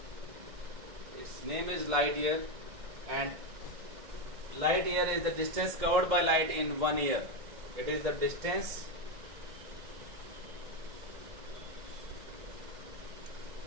Its name is light year, and light year is the distance covered by light in 1 year. It is the distance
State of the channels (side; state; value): left; late; 2.1 ms